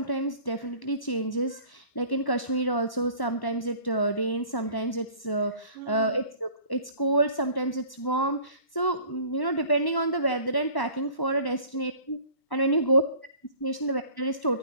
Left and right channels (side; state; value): right; late; 1.1 ms